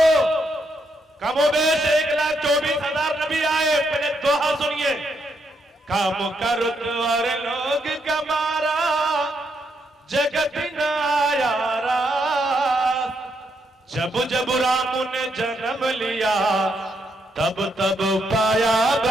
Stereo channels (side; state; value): both; normal; correlation 0.78